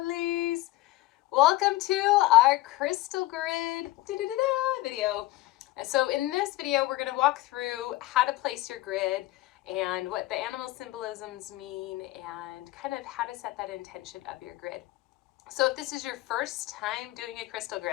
Welcome to our crystal grid video. And so in this video, we're going to walk through how to place your grid and what the animal symbolisms mean and kind of how to set that intention of your grid. So if this is your first time doing a crystal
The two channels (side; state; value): right; quieter; 18.0 dB